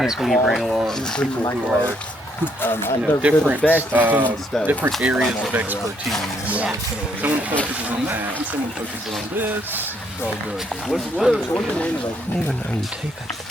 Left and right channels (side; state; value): both; normal; correlation 0.71